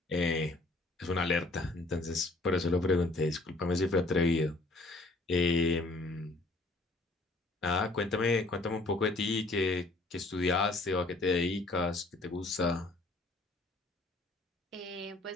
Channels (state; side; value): quieter; right; 3.0 dB